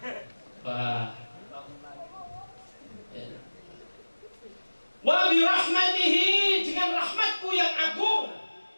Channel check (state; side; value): inverted; both; correlation -1.00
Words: Wah. Wa bi rahmatihi, dengan rahmatku yang agung.